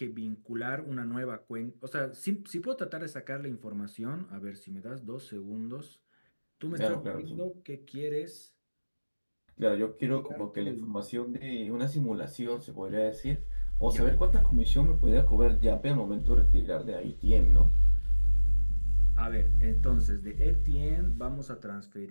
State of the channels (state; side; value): inverted; both; correlation -1.00